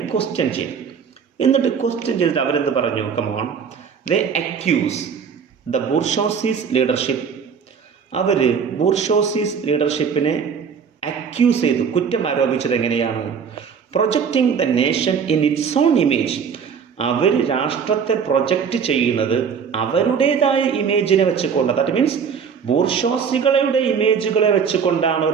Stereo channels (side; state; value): left; quieter; 6.7 dB